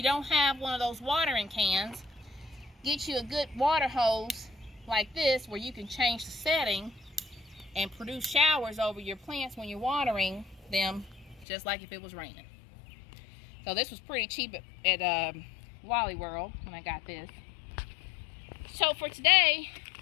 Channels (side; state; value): right; drops out; at 11.5 s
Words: don't have one of those watering cans, get you a good water hose like this where you can change the setting and produce showers over your plants when you're watering them, just like if it was raining. So this was pretty cheap at Wally World when I got this. So for today,